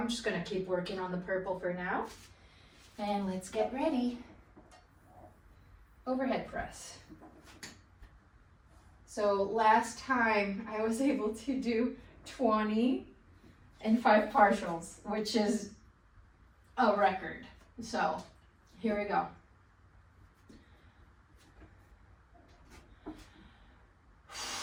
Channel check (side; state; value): both; identical; correlation 1.00